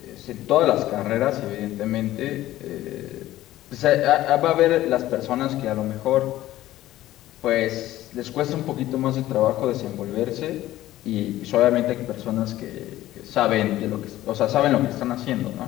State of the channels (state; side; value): quieter; right; 14.9 dB